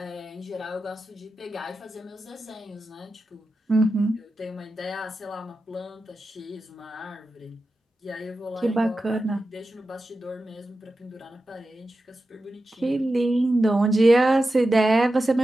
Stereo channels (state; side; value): normal; both; correlation 0.92